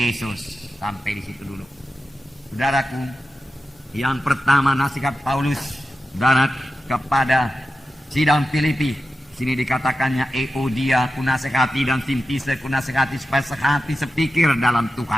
Sampai di situ dulu. Saudaraku, yang pertama nasihat Paulus, saudara, kepada sidang Filipi. Sini dikatakannya Euodia ku nasihati dan Sintise ku nasihati supaya sehati sepikir dalam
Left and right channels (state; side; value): normal; both; correlation 0.92